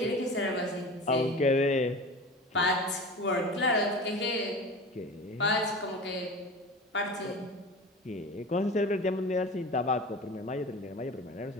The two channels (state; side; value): normal; both; correlation 0.34